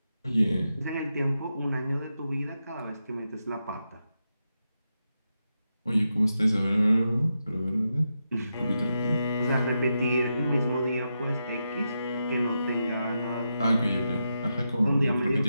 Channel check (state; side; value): inverted; both; correlation -0.87